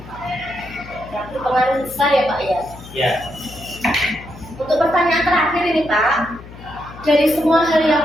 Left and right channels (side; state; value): left; noise; hum, 17 dB below the sound